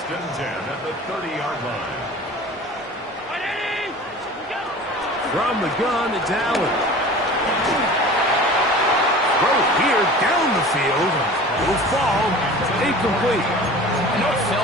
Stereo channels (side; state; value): both; normal; correlation 0.40